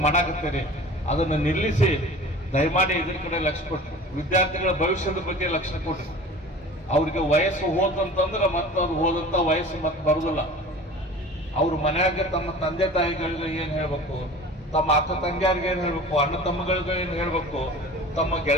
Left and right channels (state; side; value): normal; both; correlation 0.40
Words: ಮಾಡಾಕತ್ತೀರಿ, ಅದನ್ನು ನಿಲ್ಲಿಸಿ ದಯಮಾಡಿ ಇದ್ರ ಕಡೆ ಲಕ್ಷ್ಯ ಕೊಟ್ರಿ. ವಿದ್ಯಾರ್ಥಿಗಳ ಭವಿಷ್ಯದ ಬಗ್ಗೆ ಲಕ್ಷ್ಯ ಕೊಟ್ರಿ. ಅವ್ರಿಗೆ ವಯಸ್ಸು ಹೋದಂತಂದ್ರೆ ಮತ್ತೆ ಅದು ಹೋದಂತ ವಯಸ್ಸು ಮತ್ತೆ ಬರುದಿಲ್ಲ. ಅವ್ರ ಮನ್ಯಾಗ ತಮ್ಮ ತಂದೆ ತಾಯಿಗಳಿಗೆ ಏನ್ ಹೇಳ್ಬೇಕು, ತಮ್ಮ ಅಕ್ಕ ತಂಗಿಯರಿಗೆ ಏನ್ ಹೇಳ್ಬೇಕು, ಅಣ್ಣ ತಮ್ಮಗಳಿಗೆ ಏನ್ ಹೇಳ್ಬೇಕು, ತಮ್ಮ